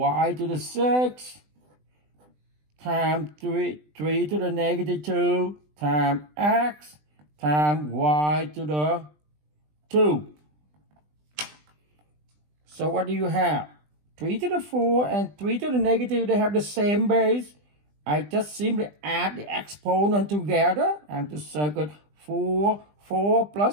to the 6, times 3 to the negative 2, times x, times y to the 2. So what do you have? 3 to the 4 and 3 to the negative, they have the same base. I just simply add the exponent together and to circle 4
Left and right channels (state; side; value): late; left; 20 ms